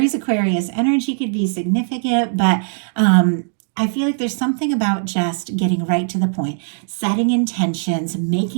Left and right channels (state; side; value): silent; left; digital silence